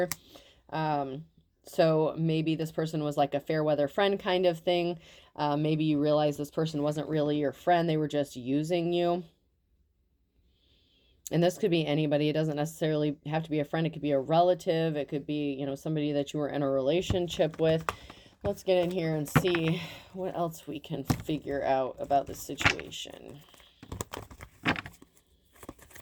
So maybe this person was like a fair weather friend kind of thing. Maybe you realize this person wasn't really your friend. They were just using you. And this could be anybody. It doesn't necessarily have to be a friend. It could be a relative. It could be, somebody that you were in a relationship with. Let's get in here and see what else we can figure out about this situation.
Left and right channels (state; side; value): identical; both; correlation 1.00